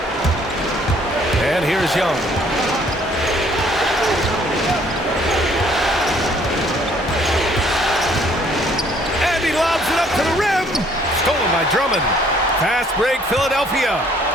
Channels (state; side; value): normal; both; correlation 0.61